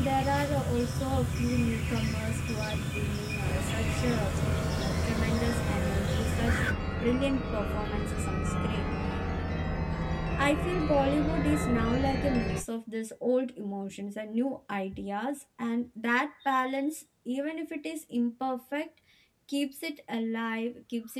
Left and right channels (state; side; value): identical; both; correlation 1.00